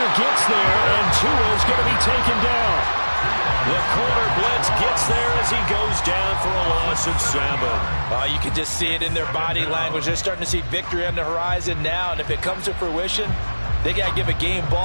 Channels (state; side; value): inverted; both; correlation -1.00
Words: gets there, and Tua's going to be taken down. The corner blitz gets there as he goes down for a loss of 7. You can just see it in their body language. They're starting to see victory on the horizon now, and if it comes to fruition, they got to give a game